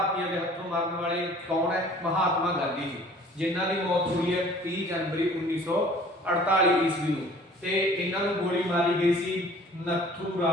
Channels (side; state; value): both; normal; correlation 0.50